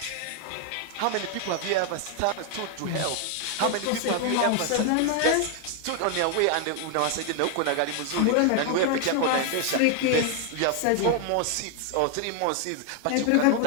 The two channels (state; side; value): different; both; correlation 0.00